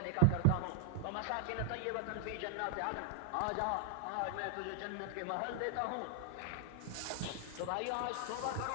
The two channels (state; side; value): different; both; correlation 0.00